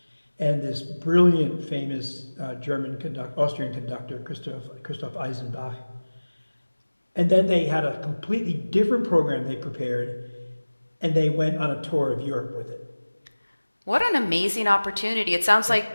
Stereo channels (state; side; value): inverted; both; correlation -1.00